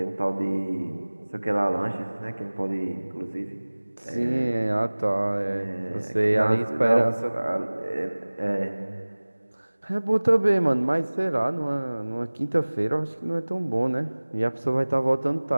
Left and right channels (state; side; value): inverted; both; correlation -1.00